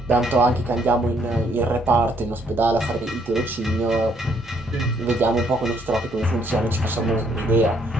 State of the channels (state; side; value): normal; both; correlation 0.68